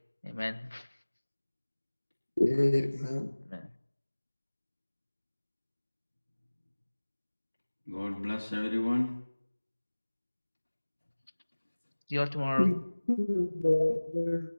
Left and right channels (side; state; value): both; inverted; correlation -1.00